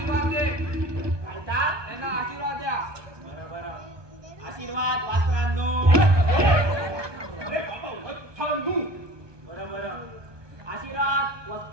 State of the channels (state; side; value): late; left; 1.2 ms